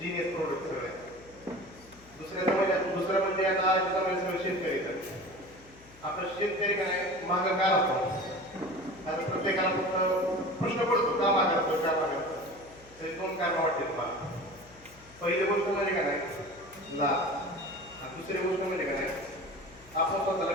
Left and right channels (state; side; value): noise; left; hum, 23 dB below the sound